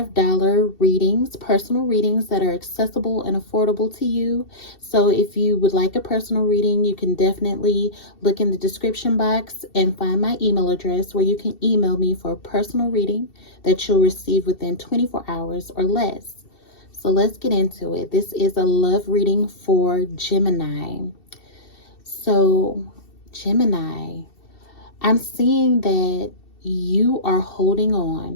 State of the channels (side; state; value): right; late; 2.7 ms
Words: readings, personal readings that are accessible and affordable to you. So if you would like a personal reading, you can definitely look in the description box and find my email address where you can email me for a personal reading that you'll receive within 24 hours or less. So let's get into it. This is a love reading for Gemini. So, Gemini, I'm seeing that you are holding